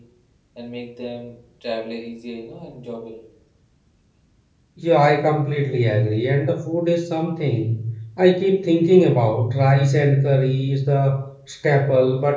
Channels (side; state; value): both; identical; correlation 1.00